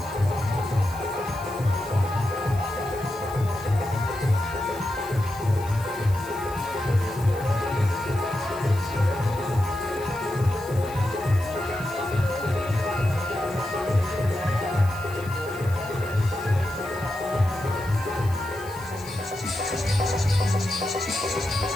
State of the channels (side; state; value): left; noise; hiss, 19 dB below the sound